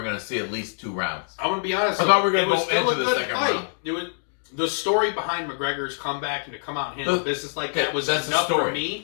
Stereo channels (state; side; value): silent; right; digital silence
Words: were going to see at least 2 rounds. I'm going to be honest. I thought we were going to go into the second fight. round. It was the story behind McGregor's comeback and to come out and handle business like that was enough for